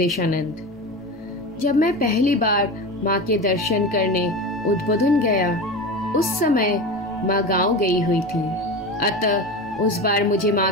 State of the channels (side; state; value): both; normal; correlation 0.27